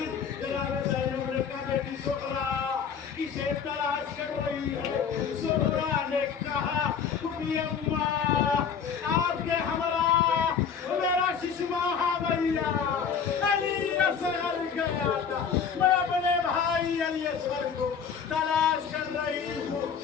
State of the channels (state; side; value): quieter; right; 6.9 dB